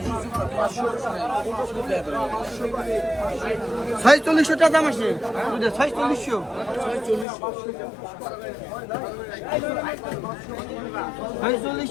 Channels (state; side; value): drops out; right; at 7.2 s